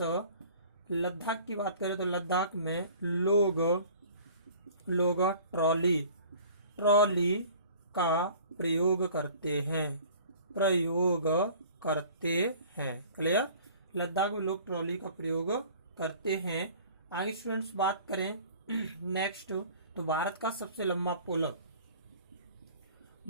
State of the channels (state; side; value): inverted; both; correlation -0.48